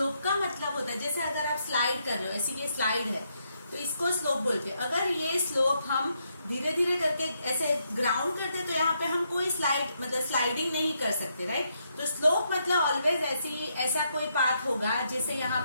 का मतलब होता है, जैसे अगर आप स्लाइड कर रहे हो, ऐसी ये स्लाइड है तो इसको स्लोप बोलते हैं। अगर ये स्लोप हम धीरे धीरे करके ऐसे ग्राउंड करते तो यहाँ पे हम कोई स्लाइडिंग नहीं कर सकते, राइट। तो स्लोप मतलब ऑलवेज ऐसा कोई पाथ होगा, जैसे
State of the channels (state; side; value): inverted; both; correlation -0.78